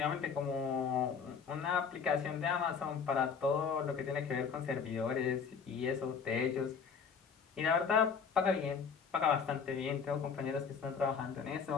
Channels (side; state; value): right; quieter; 6.1 dB